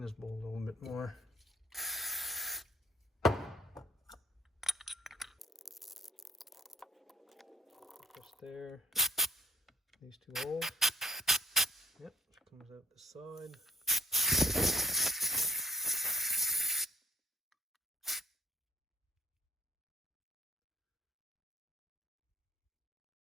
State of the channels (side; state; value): both; normal; correlation 0.62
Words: this bowl a little bit more. Just there. These two holes. Yep, it comes out the side.